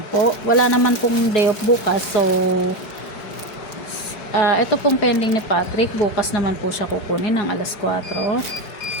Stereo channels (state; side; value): late; right; 4.7 ms